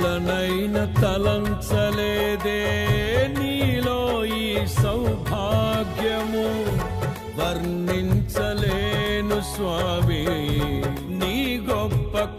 తలంచలేదే నీలో ఈ సౌభాగ్యము, వర్ణించలేను స్వామి నీ గొప్ప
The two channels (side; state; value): both; identical; correlation 1.00